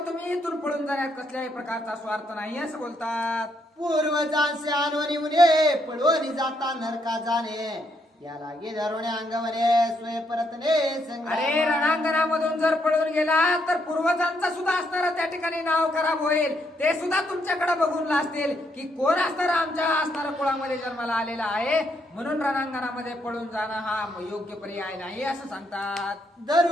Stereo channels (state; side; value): normal; both; correlation 0.75